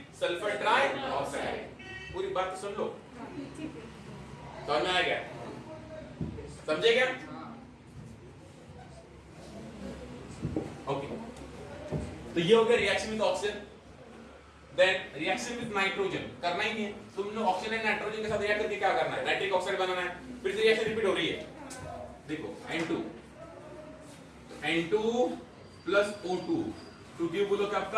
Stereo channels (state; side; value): identical; both; correlation 1.00